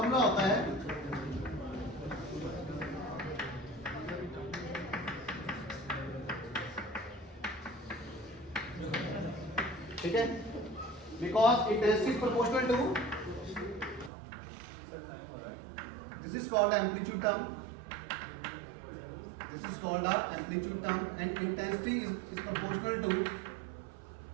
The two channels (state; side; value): drops out; left; at 14.1 s